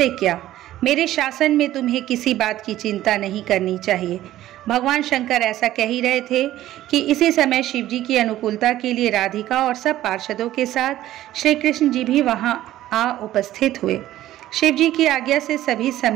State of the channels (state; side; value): quieter; left; 14.0 dB